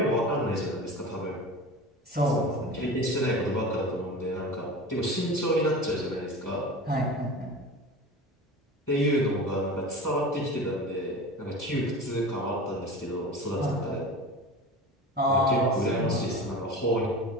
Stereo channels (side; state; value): both; normal; correlation 0.33